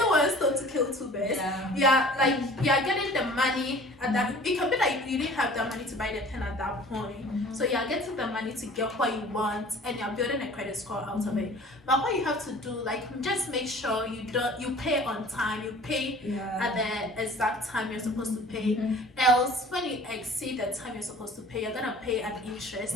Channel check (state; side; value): normal; both; correlation 0.47